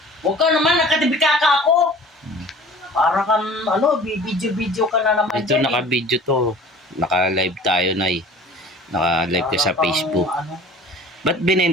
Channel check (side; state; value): both; normal; correlation 0.45